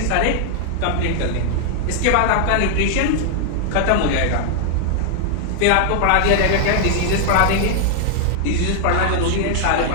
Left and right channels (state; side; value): different; both; correlation 0.00